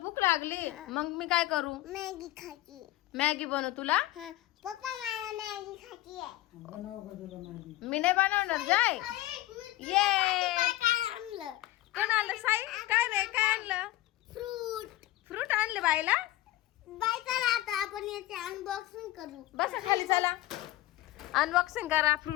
लागली मग मी काय करू मॅगी खायची. मॅगी बनवू तुला पप्पा मला मॅगी खायची आहे. मी नाही बनवणार जाय ये कोण आणलं साई काय रे काय आणलं फ्रूट आणले बाईला बाय चला आता आपण याचे अनबॉक्सिंग करू. बसा खाली चला अनबॉक्सिंग करा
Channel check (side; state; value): right; quieter; 16.3 dB